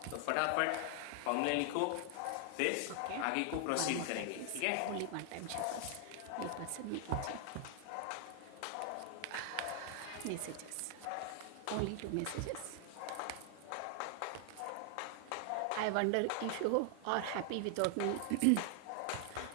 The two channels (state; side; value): different; both; correlation 0.00